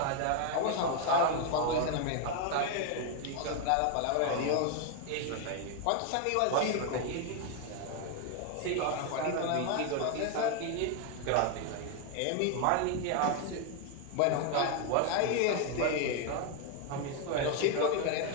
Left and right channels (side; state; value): both; different; correlation 0.00